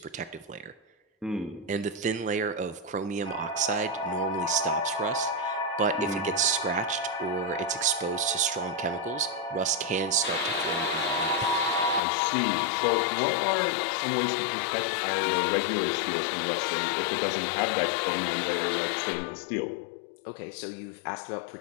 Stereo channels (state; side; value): drops out; right; at 12.0 s